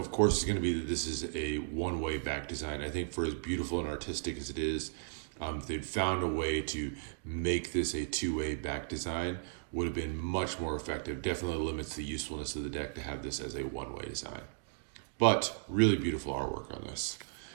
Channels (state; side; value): silent; left; digital silence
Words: course, is going to be that this is a one-way back design. I think for as beautiful and artistic as it is, if they'd found a way to make this a two-way back design, would have been much more effective. Definitely limits the usefulness of the deck to have this as a one-way design. But really beautiful artwork on this.